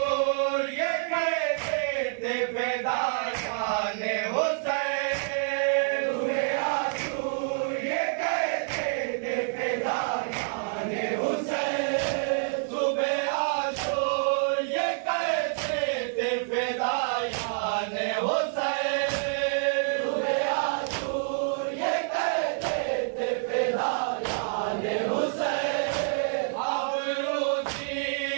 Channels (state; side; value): silent; left; digital silence